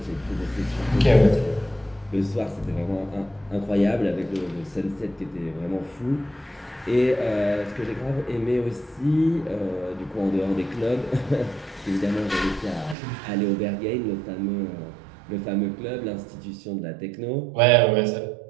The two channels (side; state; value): left; drops out; at 13.0 s